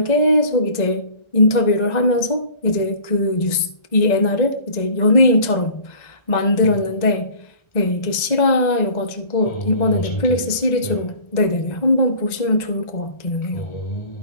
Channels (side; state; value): right; late; 1.9 ms